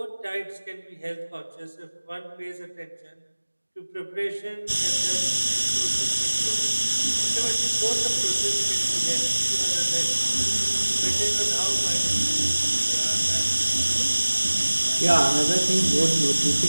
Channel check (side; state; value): both; inverted; correlation -1.00